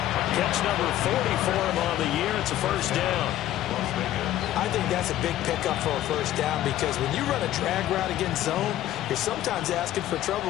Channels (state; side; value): quieter; right; 13.4 dB